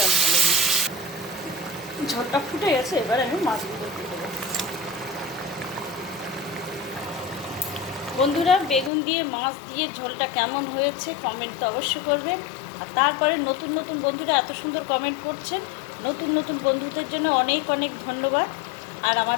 ঢেলে দিই। ঝোলটা ফুটে গেছে, এবার আমি মাছগুলো দিয়ে দেবো। বন্ধুরা, বেগুন দিয়ে মাছ দিয়ে ঝোলটা কেমন হয়েছে কমেন্ট তো অবশ্যই করবেন। আর তারপরে নতুন নতুন বন্ধুরা এত সুন্দর কমেন্ট করছেন, নতুন নতুন বন্ধুদের জন্য অনেক অনেক ধন্যবাদ। আর আমার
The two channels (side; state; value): right; drops out; at 8.9 s